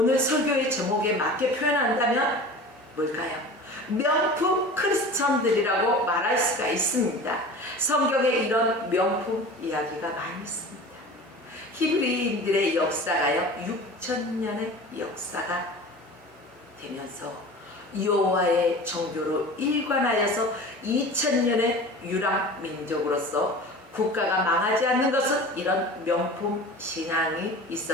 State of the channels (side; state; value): both; normal; correlation 0.37